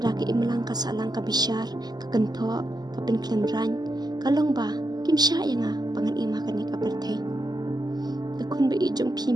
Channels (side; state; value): left; late; 0.20 ms